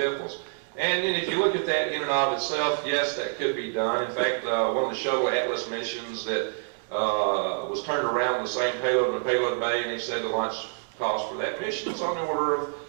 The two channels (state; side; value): silent; left; digital silence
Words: And then if you look at that in and of itself, yes, that could be done. In fact, one of the shuttle Atlas missions that was turned around the same payload in the payload bay, and he said the launch cost for that mission is on the order